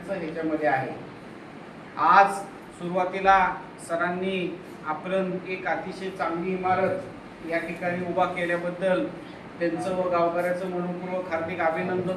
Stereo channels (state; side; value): identical; both; correlation 1.00